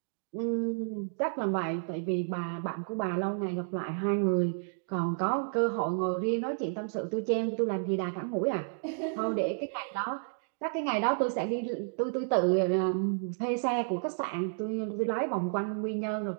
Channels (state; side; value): silent; left; digital silence